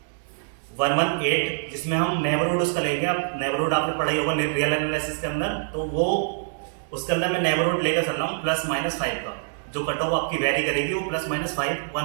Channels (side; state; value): left; silent; digital silence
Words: जिसमें हम नेबरहुड उसका लेंगे। अब नेबरहुड आपने पढ़ाई होगा रियल एनालिसिस के अंदर, तो वो उसके अंदर मैं नेबरहुड लेकर चल रहा हूँ +-5 का। जो कट ऑफ आपकी वेरी करेगी वो +-5